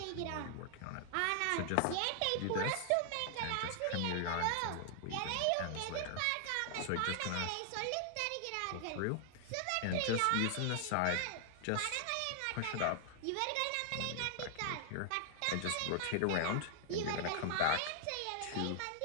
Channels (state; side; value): different; both; correlation 0.00